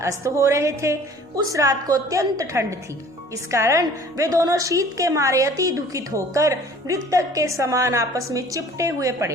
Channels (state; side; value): normal; both; correlation 0.50